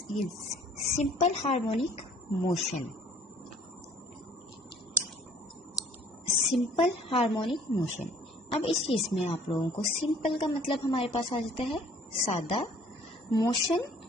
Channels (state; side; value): normal; both; correlation 0.56